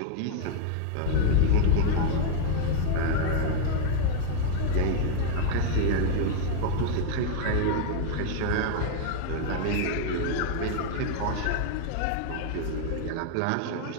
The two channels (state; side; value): different; both; correlation 0.00